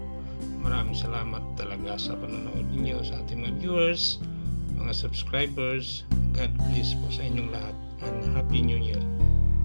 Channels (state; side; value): inverted; both; correlation -1.00